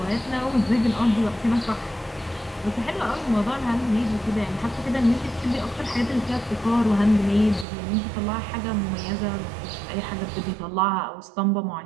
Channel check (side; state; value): left; drops out; at 7.7 s